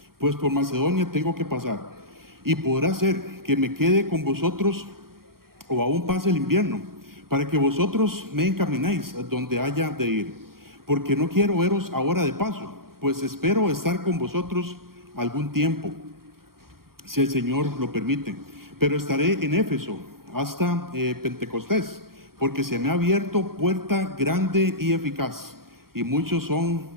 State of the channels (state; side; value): late; left; 0.93 ms